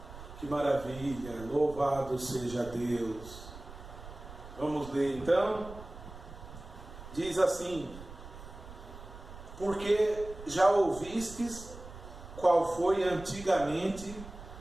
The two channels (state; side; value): noise; right; rumble, 14 dB below the sound